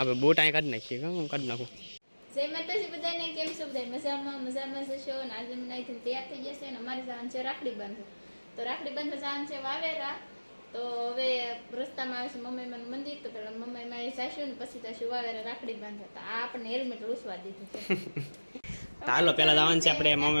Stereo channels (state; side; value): inverted; both; correlation -1.00